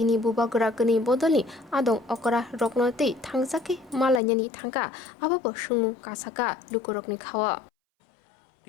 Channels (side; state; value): right; drops out; at 4.2 s